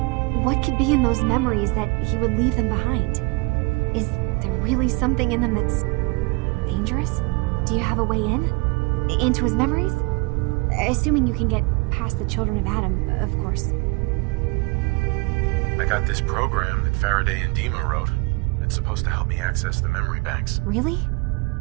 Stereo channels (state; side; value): quieter; left; 27.0 dB